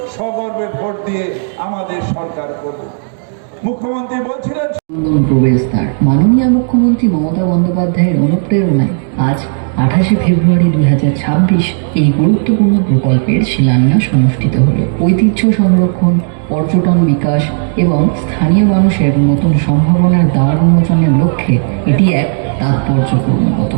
সগর্বে ভোট দিয়ে আমাদের সরকার করব। মুখ্যমন্ত্রী বলছিলেন, প্রবেশদ্বার মাননীয় মুখ্যমন্ত্রী মমতা বন্দ্যোপাধ্যায়ের অনুপ্রেরণায় আজ 28শে ফেব্রুয়ারি 2026 এই গুরুত্বপূর্ণ প্রকল্পের শিলান্যাস অনুষ্ঠিত হল। ঐতিহ্য সংরক্ষণ, পর্যটন বিকাশ এবং স্থানীয় মানুষের নতুন সম্ভাবনার দ্বার উন্মোচনের লক্ষ্যে এটি এক তাৎপর্যপূর্ণ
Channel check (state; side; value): silent; left; 61 dB below the other